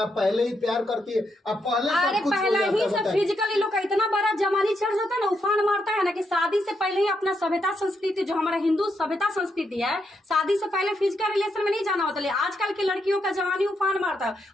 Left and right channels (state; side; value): normal; both; correlation 0.80